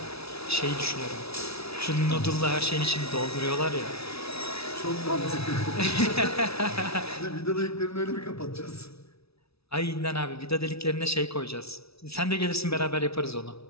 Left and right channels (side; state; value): right; late; 0.77 ms